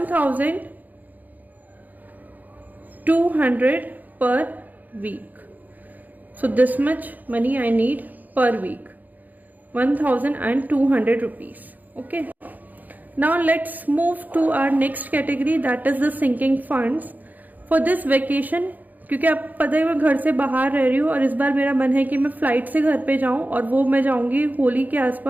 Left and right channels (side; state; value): left; late; 0.082 ms